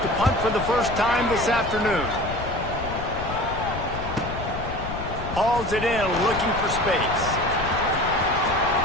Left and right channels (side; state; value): left; noise; rumble, 8 dB below the sound